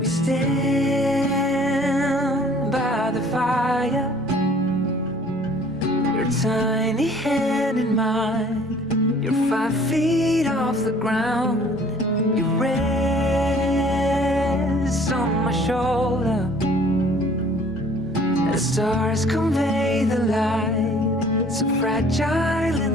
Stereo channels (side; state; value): both; normal; correlation 0.54